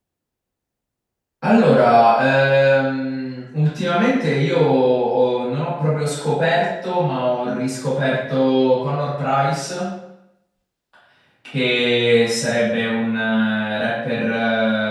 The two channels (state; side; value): identical; both; correlation 1.00